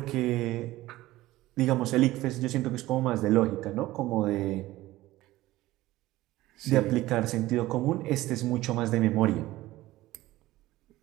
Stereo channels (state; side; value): quieter; left; 17.1 dB